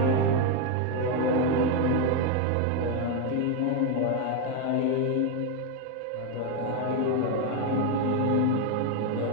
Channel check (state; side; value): different; both; correlation 0.02